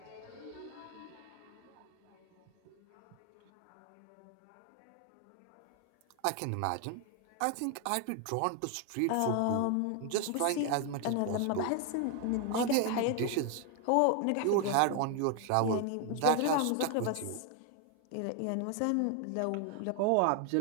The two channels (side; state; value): both; different; correlation 0.01